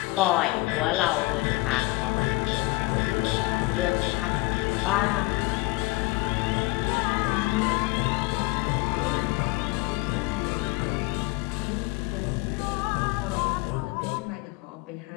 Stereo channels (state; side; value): quieter; right; 22.3 dB